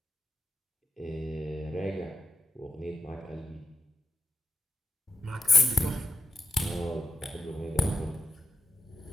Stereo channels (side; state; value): both; normal; correlation 0.85